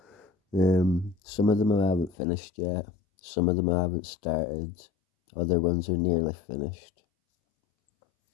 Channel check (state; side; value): drops out; right; at 2.1 s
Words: Some of them I haven't finished yet, some of them I haven't started, other ones are nearly finished,